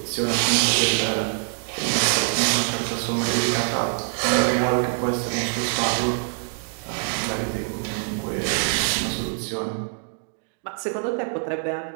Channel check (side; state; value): left; silent; 62 dB below the other